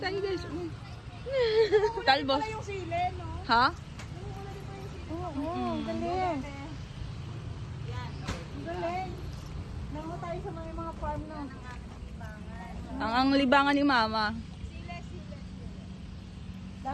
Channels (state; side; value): identical; both; correlation 1.00